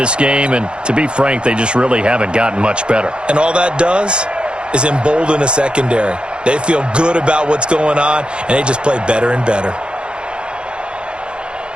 game, and to be frank, they just really haven't gotten much better. And all that does is embolden a secondary. They feel good about what's going on, and they just play better and better.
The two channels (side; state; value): left; late; 0.054 ms